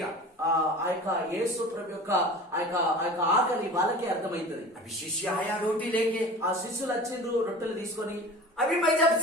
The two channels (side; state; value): both; normal; correlation 0.38